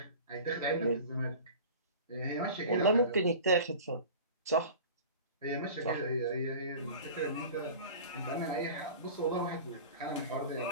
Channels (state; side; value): inverted; both; correlation -0.38